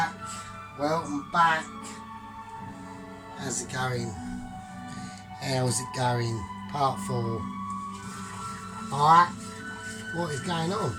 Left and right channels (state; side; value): identical; both; correlation 1.00